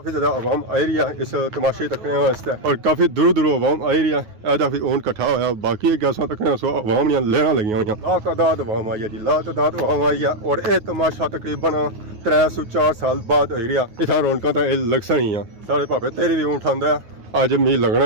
ज़्यादा आवाम आई रही है इस तमाशे तकने वास्ते और काफ़ी दूर दूर आवाम आई रही है ऐसा फिर ऊँट इकट्ठा होया बाकी गैसा तकने सो आवाम लेना लगी हुई लातादाद आवाम आई है जी लातादाद आवाम आई है और यह तमाशा तकरीबन 304 साल बाद आई रहा इतना रौनक तो यह लगसन ही है सारे भावे तेरे भी ऊँट आंदा है अज मी लगना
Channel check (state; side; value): late; left; 9.5 ms